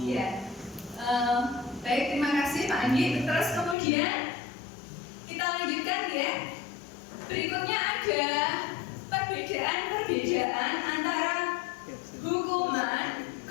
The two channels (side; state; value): right; drops out; at 3.8 s